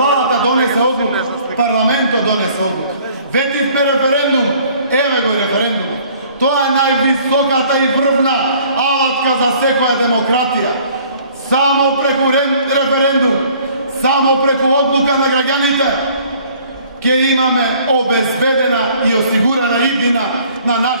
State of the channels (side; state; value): both; inverted; correlation -0.56